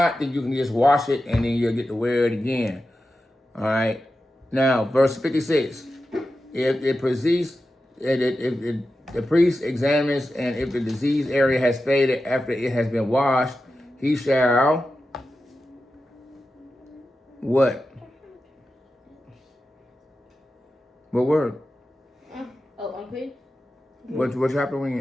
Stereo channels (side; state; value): both; normal; correlation 0.91